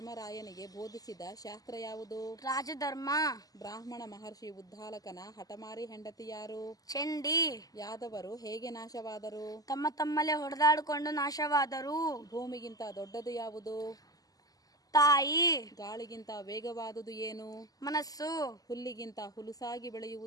ಬೋಧಿಸಿದ ಶಾಸ್ತ್ರ ಯಾವುದು? ರಾಜಧರ್ಮ. ಬ್ರಾಹ್ಮಣ ಮಹರ್ಷಿ ಉದ್ದಾಲಕನ ಹಠಮಾರಿ ಹೆಂಡತಿ ಯಾರು? ಚಂಡಿ. ಯಾದವರು ಹೇಗೆ ನಾಶವಾದರು? ತಮ್ಮ ತಮ್ಮಲ್ಲೇ ಹೊಡೆದಾಡಿಕೊಂಡು ನಾಶವಾದರು. ಭೂಮಿಗಿಂತ ದೊಡ್ಡದು ಯಾವುದು? ತಾಯಿ. ಗಾಳಿಗಿಂತ ವೇಗವಾದುದು ಏನು? ಮನಸ್ಸು. ಹುಲ್ಲಿಗಿಂತ ಹುಲುಸಾಗಿ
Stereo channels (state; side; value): late; right; 0.17 ms